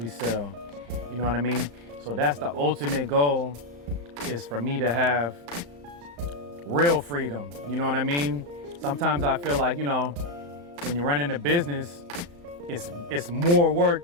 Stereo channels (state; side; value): late; left; 35 ms